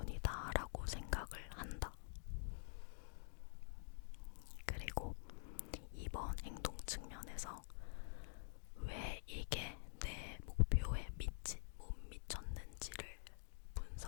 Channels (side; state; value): right; silent; digital silence